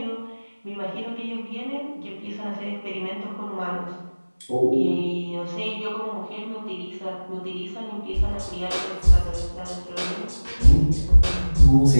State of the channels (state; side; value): inverted; both; correlation -1.00